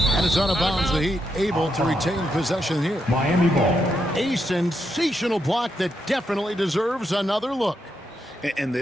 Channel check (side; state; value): both; normal; correlation 0.81